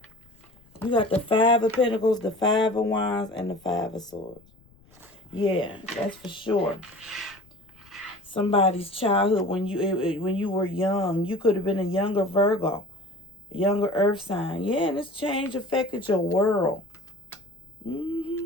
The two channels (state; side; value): noise; left; rumble, 28 dB below the sound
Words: You got the Five of Pentacles, the Five of Wands, and the Five of Swords. Yeah, that's for sure. Somebody's childhood when you were young. You could have been a younger Virgo, a younger Earth sign. Yeah, and this change affected your world.